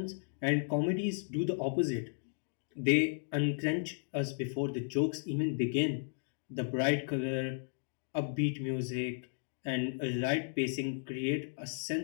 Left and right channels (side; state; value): right; silent; digital silence